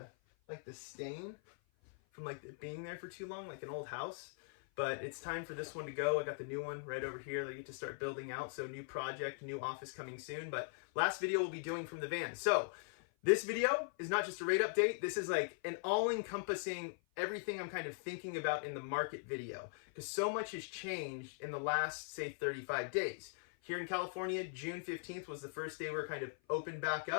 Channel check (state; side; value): silent; right; 51 dB below the other